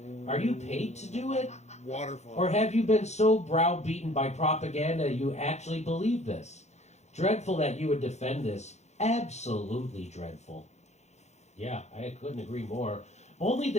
Are you paid to do it? Waterfall. Or have you been so browbeaten by propaganda you actually believe this? Dreadful that you would defend this. Absolutely dreadful." Yeah, I couldn't agree more. Only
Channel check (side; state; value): right; late; 0.33 ms